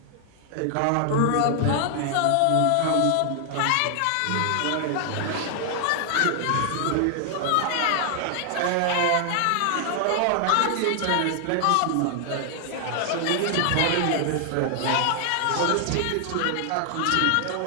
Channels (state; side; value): different; both; correlation 0.00